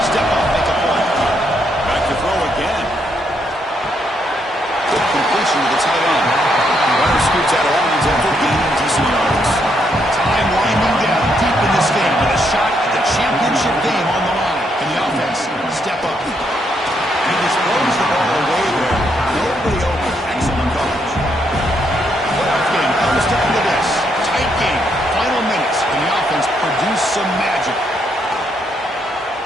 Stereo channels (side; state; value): both; normal; correlation 0.76